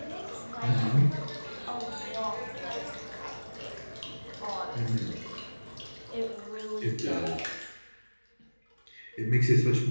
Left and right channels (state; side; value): inverted; both; correlation -1.00